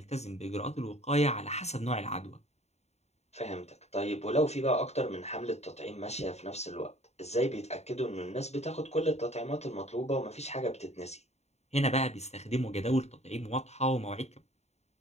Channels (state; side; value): late; right; 0.32 ms